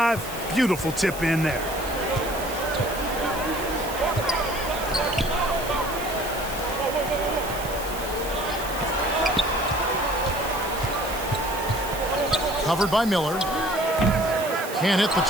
Beautiful tip in there. Covered by Miller. Can't hit the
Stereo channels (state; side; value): noise; right; hiss, 12 dB below the sound